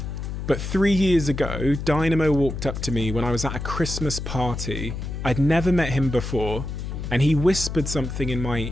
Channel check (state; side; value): noise; left; hum, 6 dB below the sound